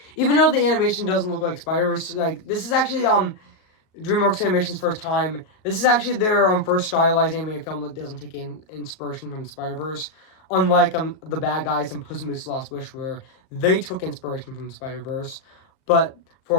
even though the animation doesn't look like Spider-Verse, like this is actually DreamWorks Animation's first time. This is actually their first stylized animated film that doesn't take inspiration from Spider-Verse. Unlike The Bad Guys and Puss in Boots: The Lost Wish, where they took inspiration from Spider-Verse, but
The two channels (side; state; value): right; late; 38 ms